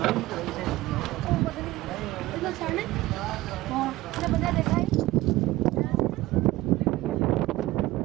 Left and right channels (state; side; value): quieter; left; 17.7 dB